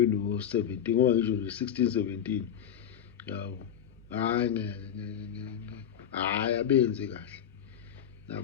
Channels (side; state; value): right; quieter; 9.3 dB